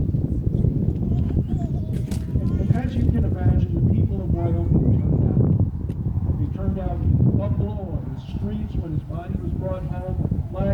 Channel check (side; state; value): both; identical; correlation 1.00